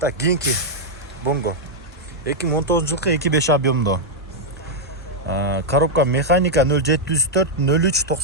Так, кийинки Bongo 2019 жылкы 2.5 объемдо коробка механика 0704 03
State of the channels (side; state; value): both; normal; correlation -0.03